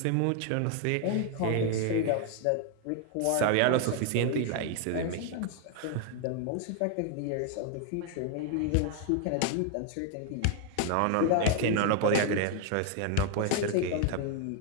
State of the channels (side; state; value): both; different; correlation 0.00